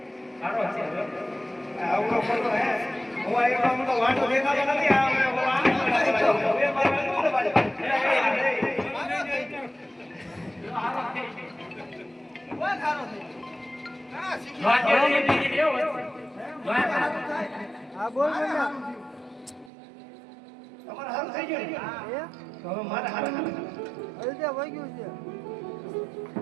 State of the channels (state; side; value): drops out; left; at 19.7 s